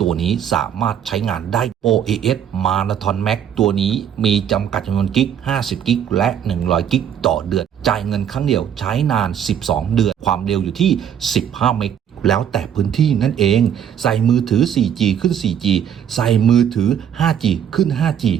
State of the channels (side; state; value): left; quieter; 9.0 dB